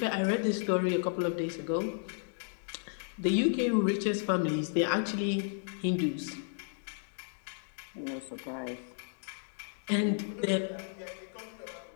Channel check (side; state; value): right; silent; digital silence